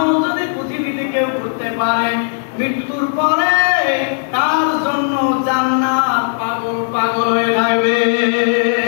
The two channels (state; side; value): silent; right; digital silence